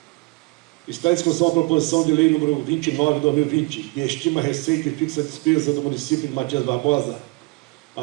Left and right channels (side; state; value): left; quieter; 27.1 dB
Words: Está em discussão a proposição de lei número 29 de 2020, que estima a receita e fixa a despesa do município de Matias Barbosa